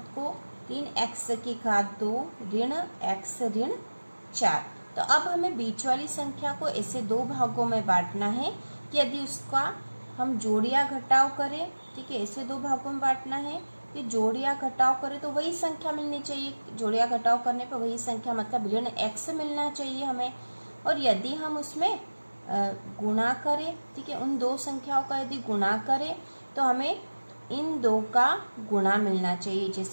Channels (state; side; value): inverted; both; correlation -1.00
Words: को 3x की घात 2 ऋण x ऋण 4। तो अब हमें बीच वाली संख्या को ऐसे दो भागों में बांटना है कि यदि उसका हम जोड़ या घटाव करें, ठीक है, ऐसे दो भागों में बांटना है कि जोड़ या घटाव करें तो वही संख्या मिलनी चाहिए। जोड़ या घटाव करने पर वही संख्या मतलब ऋण x मिलना चाहिए हमें। और यदि हम उसमें गुणा करें, ठीक है, उन दो संख्याओं का यदि गुणा करें तो हमें इन दो का गुणा मिलना चाहिए।